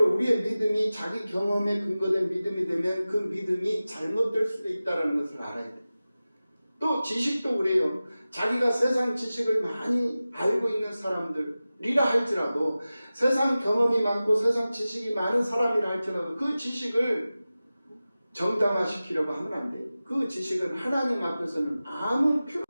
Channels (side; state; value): both; inverted; correlation -0.96